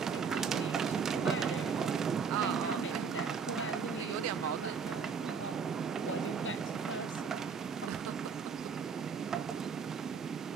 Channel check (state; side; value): quieter; left; 5.9 dB